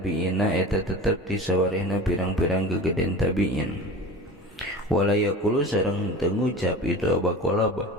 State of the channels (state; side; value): normal; both; correlation 0.34